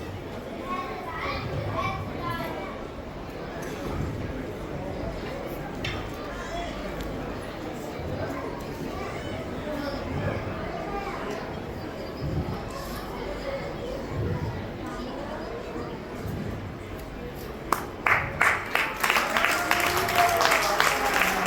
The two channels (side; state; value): both; identical; correlation 1.00